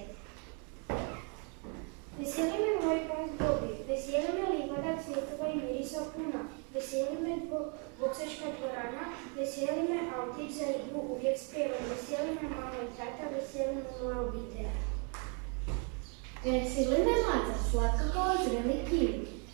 Veseli me moj pas Bobi, veseli me livada cvjetova i mirisa puna, veseli me boksačka dvorana, veseli me autić za igru uvijek spreman, veseli me mama i tata, veseli me moja obitelj. Veseli me maca, slatka kao zreli kiwi,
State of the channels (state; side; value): quieter; left; 37.1 dB